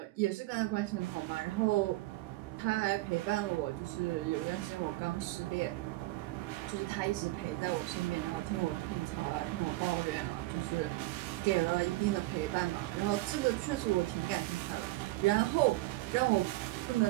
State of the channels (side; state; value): left; quieter; 18.9 dB